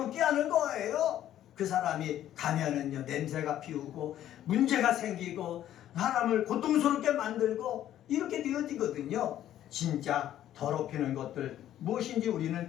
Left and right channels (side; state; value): right; quieter; 11.9 dB